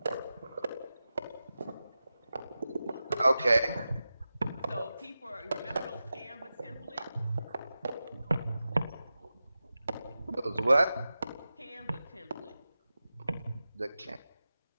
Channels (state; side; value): inverted; both; correlation -0.93